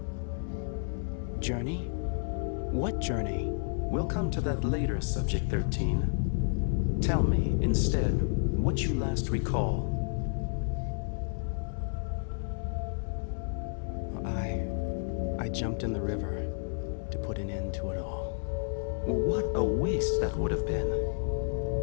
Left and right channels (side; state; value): right; silent; digital silence